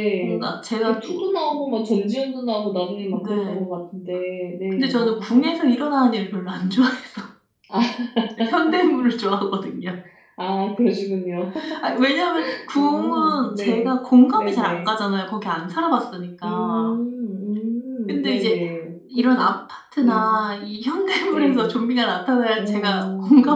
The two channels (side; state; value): both; identical; correlation 1.00